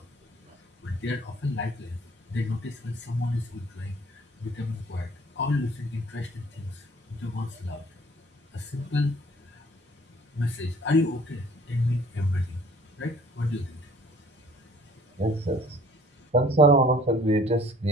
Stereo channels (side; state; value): both; normal; correlation 0.54